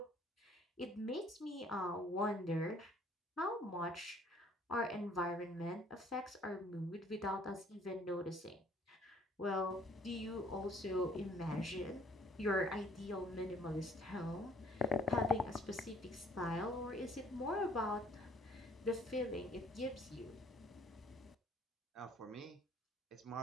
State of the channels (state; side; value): normal; both; correlation 0.59